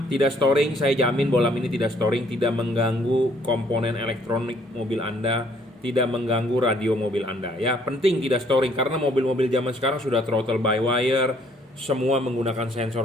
tidak storing. Saya jamin bohlam ini tidak storing, tidak mengganggu komponen elektronik mobil Anda, tidak mengganggu radio mobil Anda ya. Penting tidak storing karena mobil-mobil zaman sekarang sudah throttle by wire, semua menggunakan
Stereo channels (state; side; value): normal; both; correlation 0.63